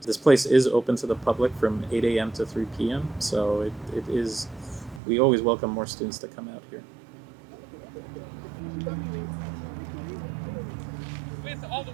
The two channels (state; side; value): drops out; left; at 5.0 s